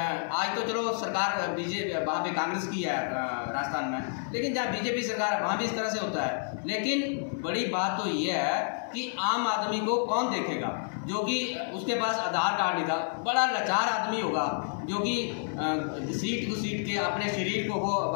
तो चलो सरकार बीजेपी वहाँ पे कांग्रेस की है राजस्थान में, लेकिन जहाँ बीजेपी सरकार है वहाँ भी इस तरह से होता है। लेकिन बड़ी बात तो ये है कि आम आदमी को कौन देखेगा, जो कि उसके पास आधार कार्ड नहीं था, बड़ा लाचार आदमी होगा जो कि सीट टू सीट के अपने शरीर को वो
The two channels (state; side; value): silent; right; 58 dB below the other